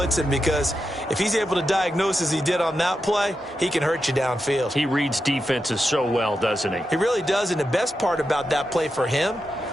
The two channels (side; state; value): both; normal; correlation 0.88